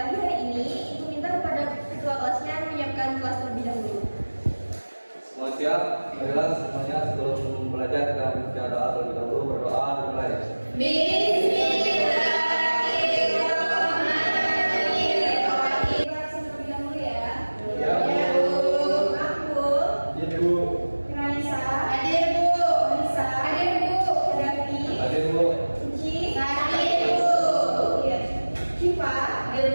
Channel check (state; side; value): inverted; both; correlation -1.00